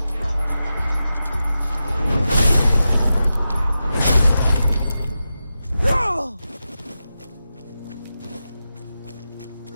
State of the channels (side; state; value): both; inverted; correlation -0.91